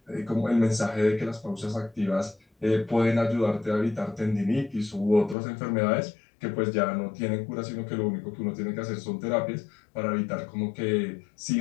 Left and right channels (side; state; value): right; drops out; at 5.4 s